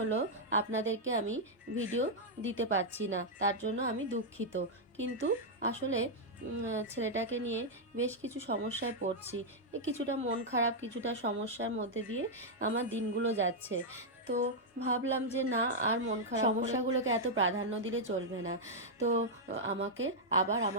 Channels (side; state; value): both; normal; correlation -0.04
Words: আপনাদেরকে আমি ভিডিও দিতে পারছি না, তার জন্য আমি দুঃখিত। কিন্তু আসলে ছেলেটাকে নিয়ে বেশ কিছু সমস্যায় পড়ছি। কিছুটা মন খারাপ, কিছুটা সমস্যার মধ্যে দিয়ে আমার দিনগুলো যাচ্ছে। তো ভাবলাম যে না, আর মন খারাপ সমস্যাগুলোকে এত প্রাধান্য দিলে চলবে না। তো আমাকে আবার